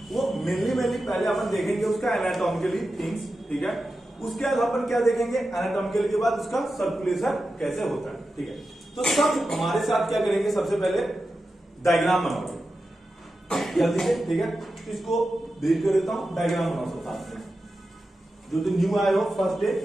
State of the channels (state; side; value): normal; both; correlation 0.91